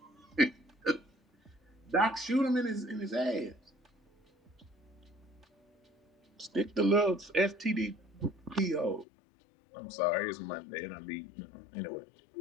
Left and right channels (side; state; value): right; drops out; at 9.1 s